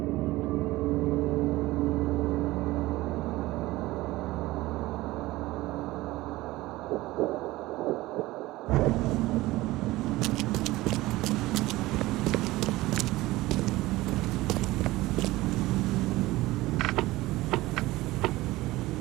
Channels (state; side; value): quieter; left; 18.5 dB